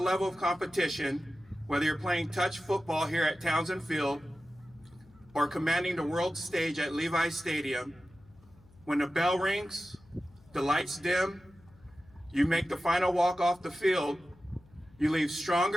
of competition, whether you're playing touch football here at Townsend Field or commanding the world stage at Levi Stadium, when the bell rings, the lights dim, you make the final walk off the field, you leave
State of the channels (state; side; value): noise; left; hum, 27 dB below the sound